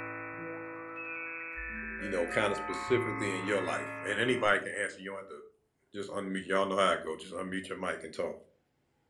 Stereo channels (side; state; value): both; identical; correlation 1.00